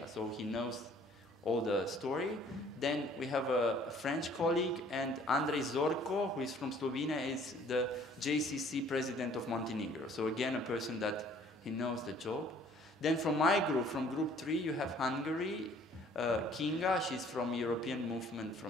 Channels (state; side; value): normal; both; correlation 0.57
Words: so he knows all the story. Then we have a French colleague, and Andrej Zorko, who is from Slovenia, is the JCC president of Montenegro. So again, a person that he knows the job. Then from my group, from group 3, you have Hungary, Kinga, she's from European Movement